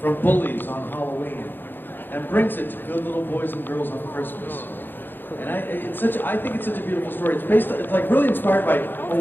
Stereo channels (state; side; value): late; right; 0.096 ms